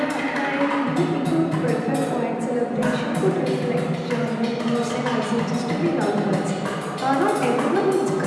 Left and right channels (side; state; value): both; identical; correlation 1.00